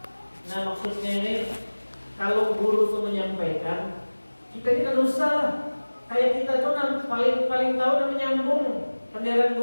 Nah, maksudnya ini kalau guru itu menyampaikan, kita ini kan usah lah. Kayak kita tuh paling tahu dan menyambung penderan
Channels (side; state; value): both; inverted; correlation -1.00